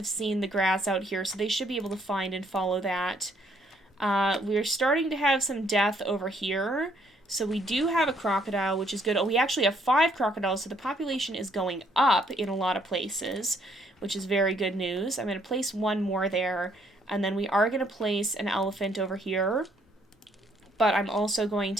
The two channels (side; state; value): both; normal; correlation 0.68